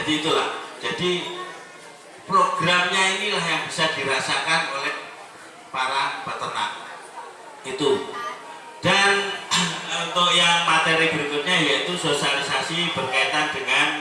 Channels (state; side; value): identical; both; correlation 1.00